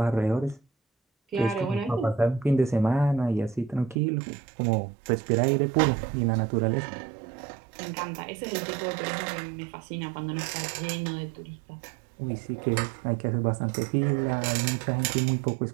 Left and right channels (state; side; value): drops out; left; at 4.0 s